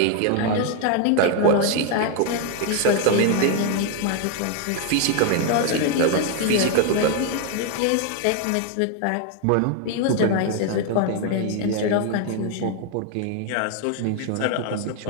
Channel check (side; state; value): both; different; correlation 0.01